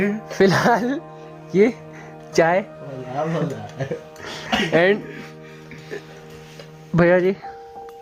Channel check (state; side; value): identical; both; correlation 1.00